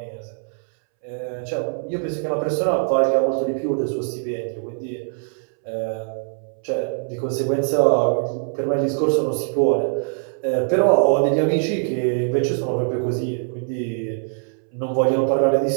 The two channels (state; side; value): silent; left; 64 dB below the other